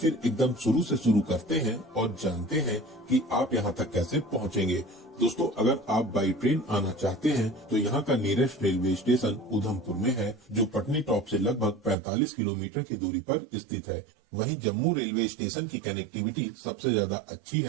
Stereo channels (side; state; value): left; drops out; at 12.0 s